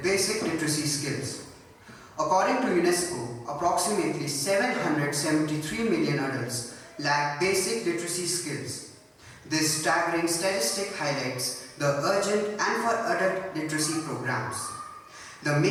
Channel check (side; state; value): both; identical; correlation 1.00